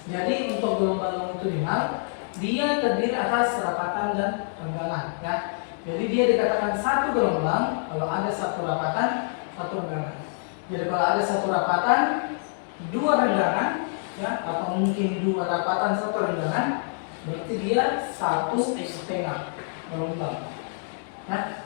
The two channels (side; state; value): right; silent; digital silence